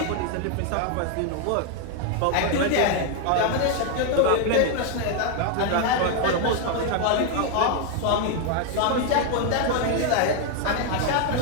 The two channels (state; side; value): different; both; correlation 0.00